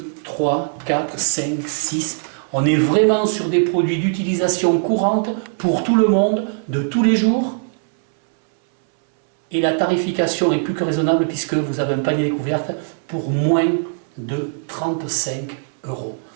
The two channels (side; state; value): left; silent; 66 dB below the other